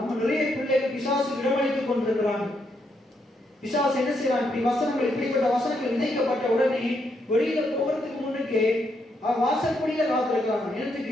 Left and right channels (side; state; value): both; normal; correlation 0.78